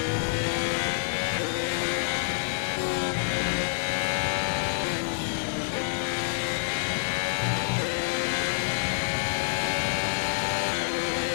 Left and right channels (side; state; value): right; silent; digital silence